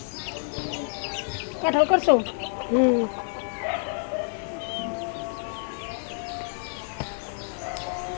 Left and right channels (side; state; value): right; silent; digital silence